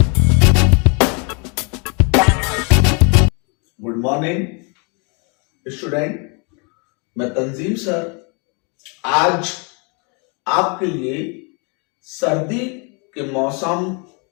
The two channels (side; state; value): right; quieter; 34.1 dB